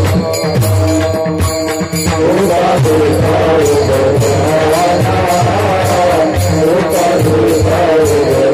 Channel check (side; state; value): both; identical; correlation 1.00